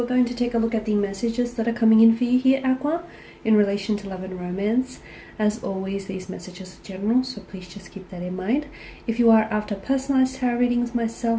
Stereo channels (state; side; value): identical; both; correlation 1.00